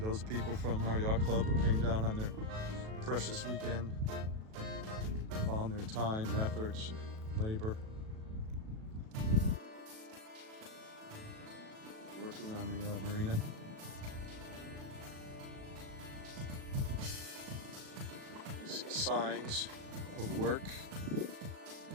people from our yacht club who came down on their precious weekend. Found their time and efforts, labor. Working on the marina. You see signs of work.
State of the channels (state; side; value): late; left; 37 ms